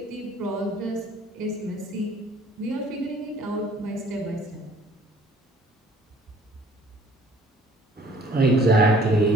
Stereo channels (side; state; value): both; normal; correlation 0.55